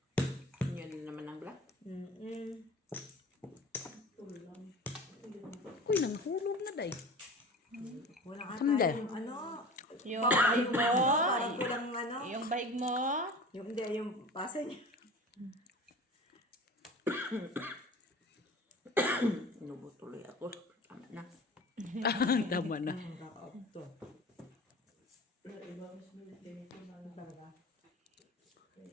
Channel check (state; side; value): normal; both; correlation 0.37